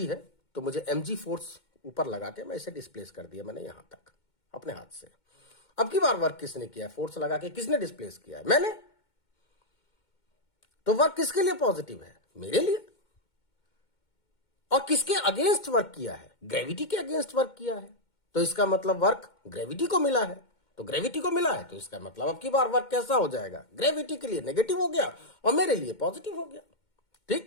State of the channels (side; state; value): right; late; 2.2 ms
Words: है, तो मुझे mg फोर्स ऊपर लगा के मैं इसे डिस्प्लेस कर दिया मैंने यहां तक अपने हाथ से। अब की बार वर्क किसने किया? फोर्स लगा के किसने डिस्प्लेस किया है? मैंने। तो वर्क किसके लिए पॉजिटिव है? मेरे लिए। और किसके अगेंस्ट वर्क किया है? ग्रेविटी के अगेंस्ट वर्क किया है, तो इसका मतलब वर्क ग्रेविटी को मिला है। तो ग्रेविटी को मिला है, तो इसका मतलब अब की बार वर्क कैसा हो जाएगा? ग्रेविटी के लिए नेगेटिव हो गया और मेरे लिए पॉजिटिव हो गया।